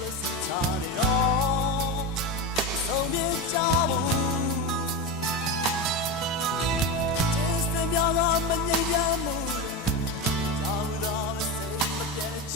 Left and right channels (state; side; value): normal; both; correlation 0.18